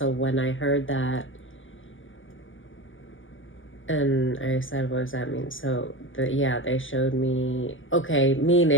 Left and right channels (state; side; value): late; right; 0.58 ms